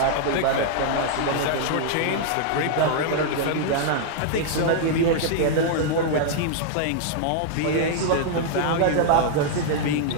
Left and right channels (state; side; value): different; both; correlation -0.01